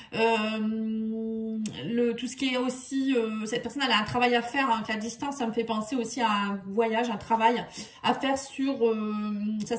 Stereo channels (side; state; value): both; identical; correlation 1.00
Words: Tout ce qui est aussi... cette personne, elle a un travail à faire. Hein, la distance, ça me fait penser aussi à un voyage, un travail à faire sur sa